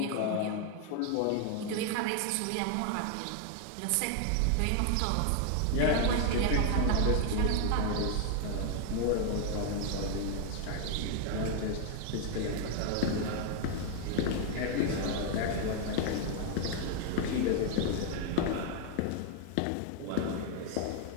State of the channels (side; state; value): both; different; correlation 0.00